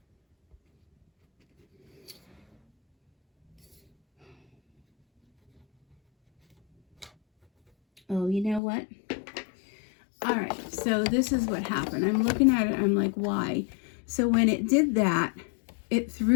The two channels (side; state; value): right; drops out; at 8.6 s